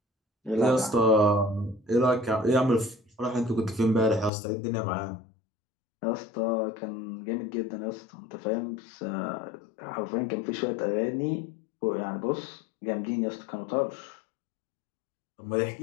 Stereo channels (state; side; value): drops out; right; at 4.3 s